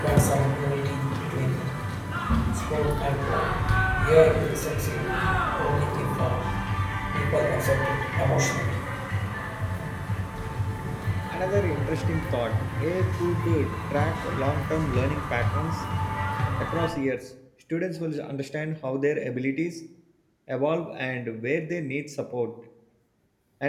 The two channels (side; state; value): both; identical; correlation 1.00